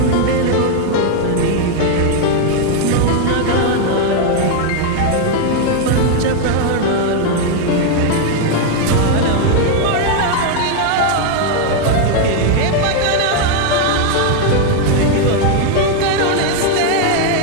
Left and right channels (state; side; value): different; both; correlation 0.00